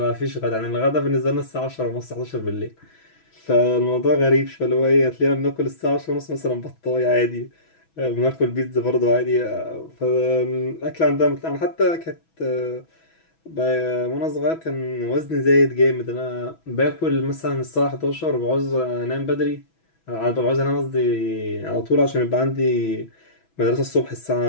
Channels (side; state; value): right; late; 6.1 ms